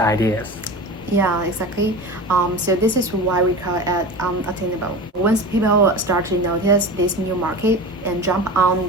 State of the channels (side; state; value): both; normal; correlation 0.31